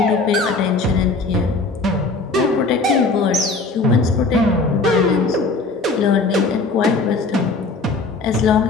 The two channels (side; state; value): right; quieter; 3.6 dB